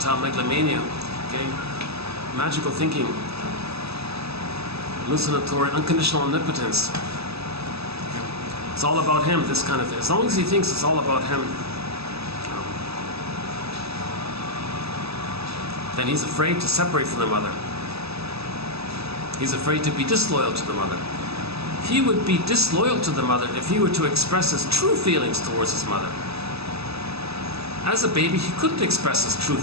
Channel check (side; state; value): left; late; 0.78 ms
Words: megalomania, okay, magical thinking, hallucinatory, unconditional omnipotence. It's all about him, this kind of thing. As long as he thinks it's all about him, then he's afraid to separate from the mother. He's afraid to be disloyal to the mother. He would be disloyal to the mother if he were to express his true feelings towards his mother. As a baby, he couldn't express his true